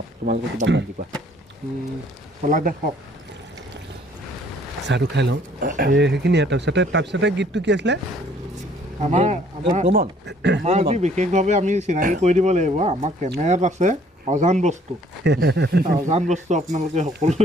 তোমালোকে কিবা বান্ধি কোৱা চাহটো খাই লওঁ সেইখিনিয়ে তাৰপিছতে গীতটো কি আছিলে আমাৰ বিশেষভাৱে আমি চিনাকি কৰি দিব লাগিব আমাৰ কেমেৰাত আছে অজান বস্তু আপোনালোকে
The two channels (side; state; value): both; normal; correlation 0.60